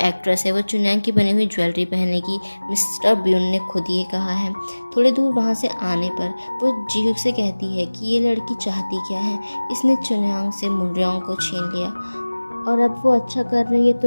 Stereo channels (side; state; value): both; inverted; correlation -1.00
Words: है वो चुन्यांग की बनी हुई ज्वेलरी पहनेगी, मिस्टर ब्यून ने खुद ये कहा है। थोड़ी दूर वहाँ से आने पर वो जीहुक से कहती है कि ये लड़की चाहती क्या है, इसने चुन्यांग से मुंगरोंग को छीन लिया और अब वो अच्छा कर रही है तो